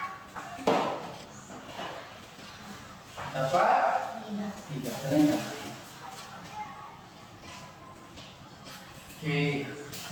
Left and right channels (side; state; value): both; identical; correlation 1.00